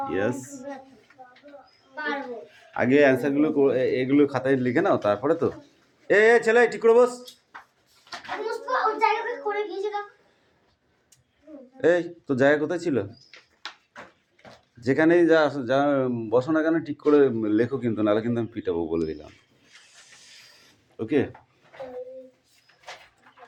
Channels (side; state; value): both; identical; correlation 1.00